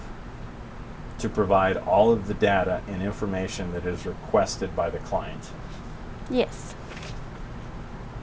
to provide all of the data and information that is requested by the client? Yes.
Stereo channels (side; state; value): both; identical; correlation 1.00